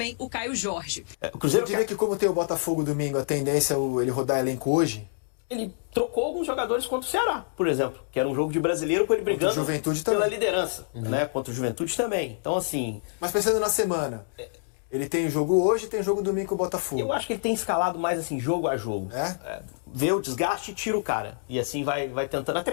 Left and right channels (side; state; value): right; silent; digital silence